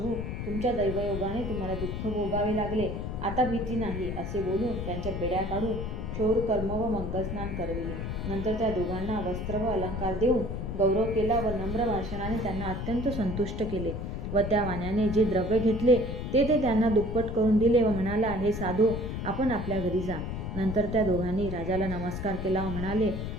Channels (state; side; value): noise; left; rumble, 4 dB below the sound